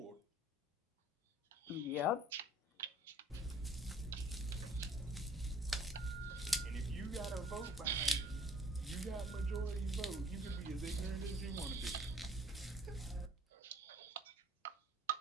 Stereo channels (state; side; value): normal; both; correlation 0.55